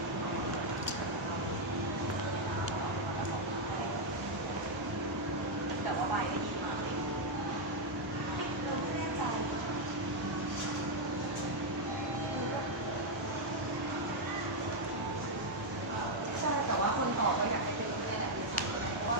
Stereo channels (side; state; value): both; normal; correlation -0.01